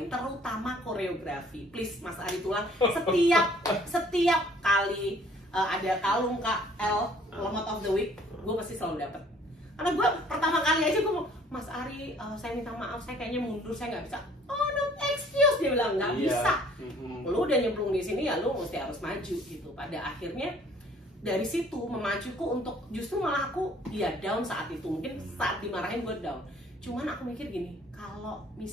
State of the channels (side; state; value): both; normal; correlation 0.57